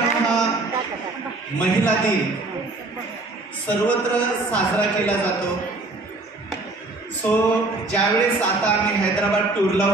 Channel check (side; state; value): left; quieter; 3.1 dB